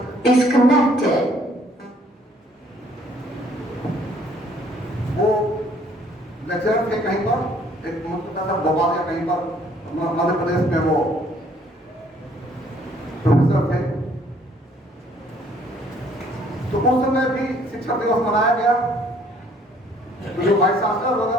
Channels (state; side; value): normal; both; correlation 0.61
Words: Disconnected. वो लेक्चरर थे कहीं पर, एक मतलब भोपाल या कहीं पर मध्य प्रदेश में वो प्रोफेसर थे। तो उस समय भी शिक्षक दिवस मनाया गया। तो जो वाइस चांसलर